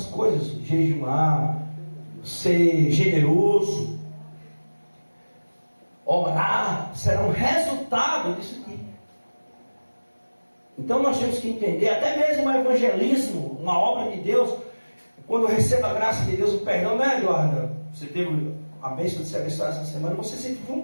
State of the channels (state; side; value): inverted; both; correlation -1.00